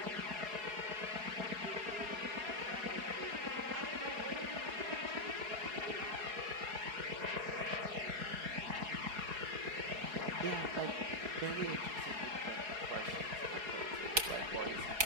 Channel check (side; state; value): left; late; 4.7 ms